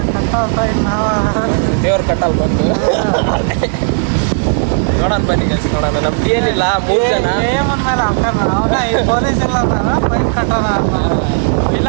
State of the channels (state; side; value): silent; left; digital silence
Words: ದೇವ್ರ ಕಟ್ಟಲ್ ಬಂದು ನೋಡೋಣ ಬನ್ನಿ ಗೈಸ್. ನೋಡೋಣ. ನಮ್ಮ DL ಇಲ್ಲ, 3 ಜನ